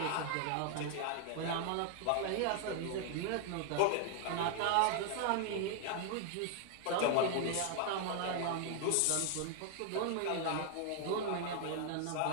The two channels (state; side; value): different; both; correlation 0.00